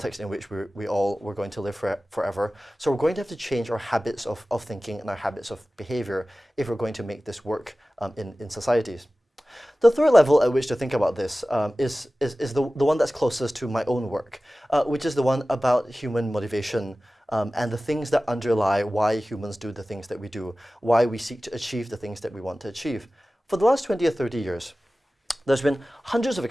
in which we all were going to live forever. So we're going to have to change our habits of thinking and our habits of behavior if we're going to make this work in societies. The third level at which to think about this is the one that's closest to my own work, which is the one about human motivation and the things that underlie why humans do the things that we do, why we seek to achieve the things that we want to achieve. For the last 20 or 30 years, there's been hundreds of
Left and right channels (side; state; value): both; normal; correlation 0.96